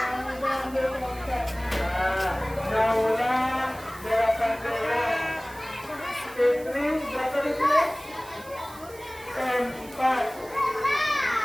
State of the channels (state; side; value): noise; right; hiss, 20 dB below the sound